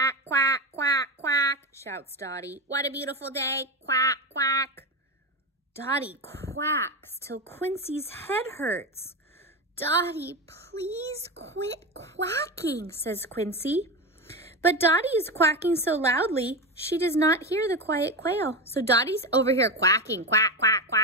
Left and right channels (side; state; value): both; normal; correlation 0.18